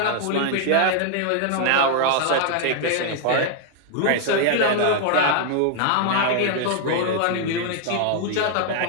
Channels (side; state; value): both; different; correlation 0.00